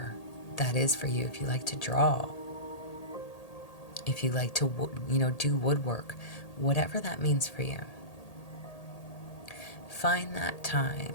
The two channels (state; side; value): late; right; 1.8 ms